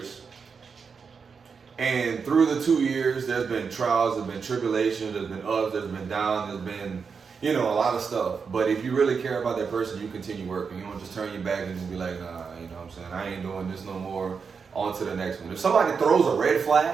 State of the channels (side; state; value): left; quieter; 5.7 dB